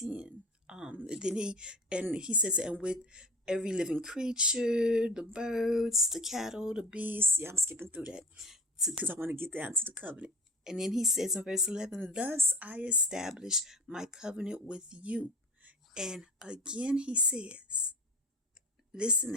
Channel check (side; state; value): both; normal; correlation 0.38